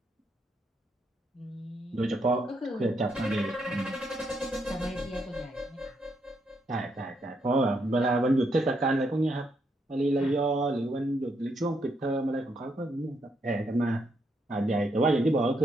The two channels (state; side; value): normal; both; correlation 0.77